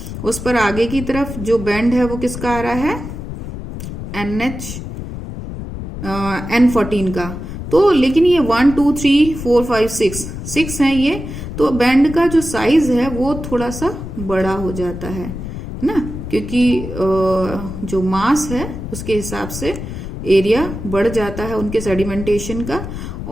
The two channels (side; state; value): left; noise; rumble, 8 dB below the sound